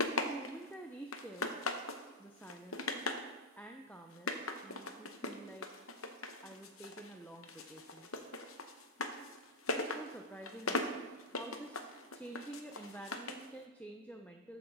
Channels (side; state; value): both; normal; correlation -0.03